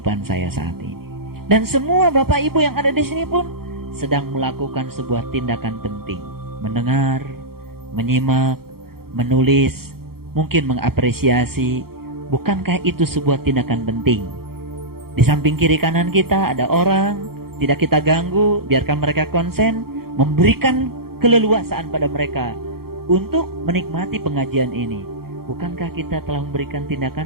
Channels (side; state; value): left; late; 0.94 ms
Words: saya saat ini. Dan semua Bapak Ibu yang ada di sini pun sedang melakukan sebuah tindakan penting. Mendengar, menyimak, menulis, mungkin mengapresiasi. Bukankah itu sebuah tindakan penting? Di samping kiri kanan kita ada orang, tidak kita ganggu, biarkan mereka konsen, memberikan keleluasaan pada mereka untuk menikmati pengajian ini. Bukankah kita telah memberikan